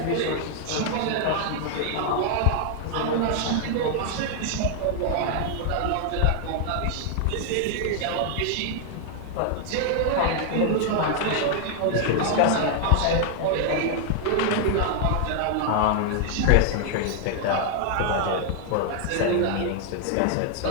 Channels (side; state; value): both; different; correlation 0.00